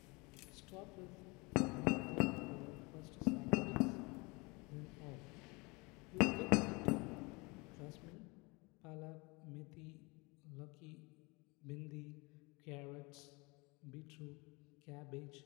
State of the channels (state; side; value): quieter; right; 26.9 dB